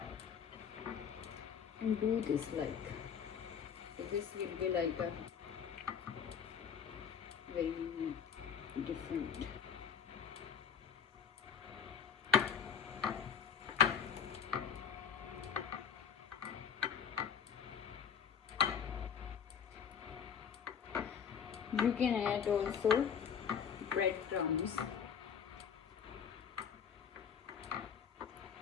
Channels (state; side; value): quieter; right; 7.6 dB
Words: and do this like so. This will be like a very different. You can add also breadcrumbs.